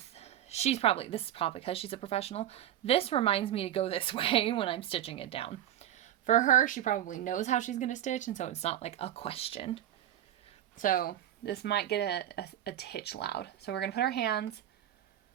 This is probably because she's a professional. This reminds me to go this way when I'm stitching it down. For her, she probably knows how she's going to stitch, and so it's not like a question. So this might get a titch loud. So we're going to put our hands.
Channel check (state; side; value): quieter; left; 11.8 dB